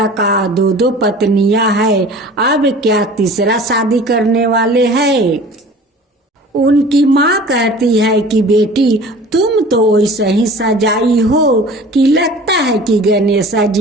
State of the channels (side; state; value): both; normal; correlation 0.43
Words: का दो पत्नियां है, अब क्या तीसरा शादी करने वाले हैं। उनकी माँ कहती है कि बेटी तुम तो वैसे ही सजाई हो कि लगता है कि गणेशा